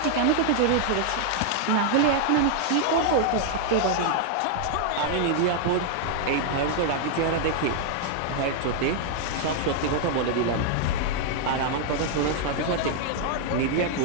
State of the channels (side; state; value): both; different; correlation 0.00